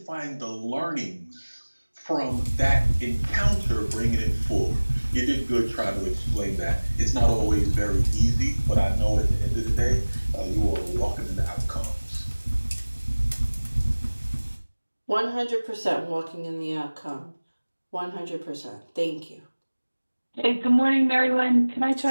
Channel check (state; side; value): inverted; both; correlation -1.00